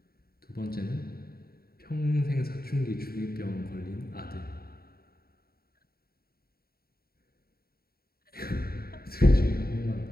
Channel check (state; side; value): late; right; 0.44 ms